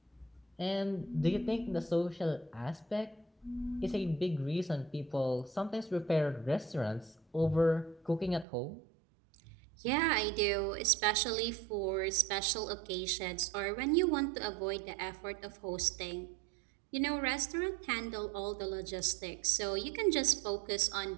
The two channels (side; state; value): left; drops out; at 8.5 s